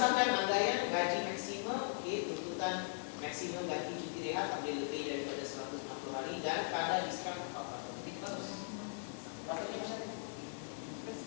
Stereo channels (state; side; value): silent; right; digital silence